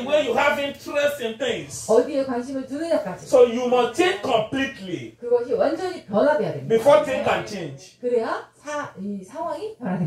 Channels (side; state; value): both; identical; correlation 1.00